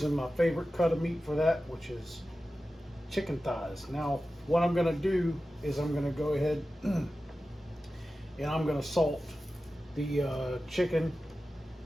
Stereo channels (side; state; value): both; normal; correlation 0.94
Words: my favorite cut of meat for that, which is chicken thighs. Now what I'm going to do is I'm going to go ahead and I'm going to salt the chicken